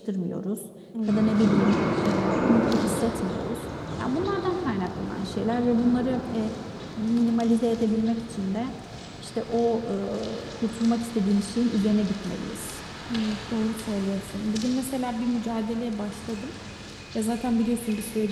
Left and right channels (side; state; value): both; identical; correlation 1.00